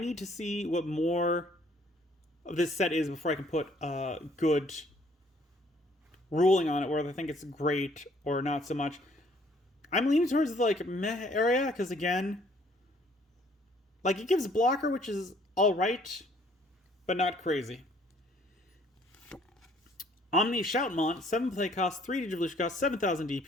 to see what more of this set is before I can put a good ruling on it, whether I think it's great or not so much. I'm leaning towards the meh area because again, it gives blocker, which is all right, but not crazy. Omni Shoutmon, 7 play cost, 3 Digivolution cost, 7,000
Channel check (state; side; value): normal; both; correlation 0.61